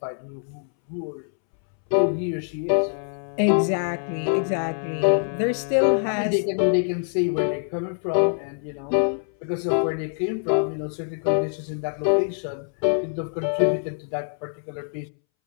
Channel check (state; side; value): silent; right; 62 dB below the other